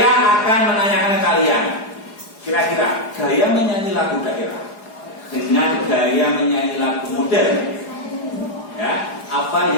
akan menanyakan ke kalian, kira-kira gaya menyanyi lagu daerah dengan gaya menyanyi lagu modern, ya, apa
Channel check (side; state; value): right; late; 4.8 ms